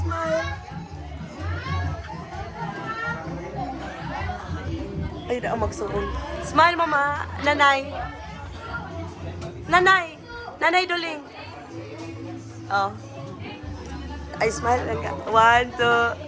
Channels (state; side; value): identical; both; correlation 1.00